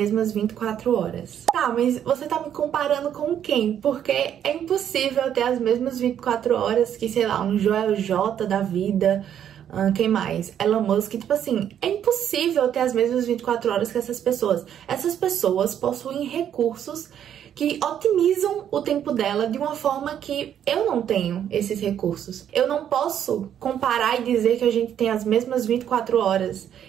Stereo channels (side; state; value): left; quieter; 9.7 dB